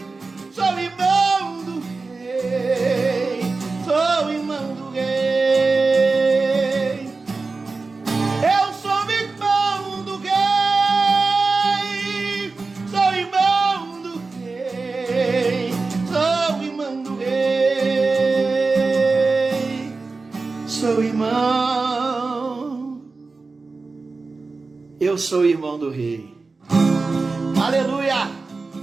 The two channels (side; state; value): left; quieter; 3.9 dB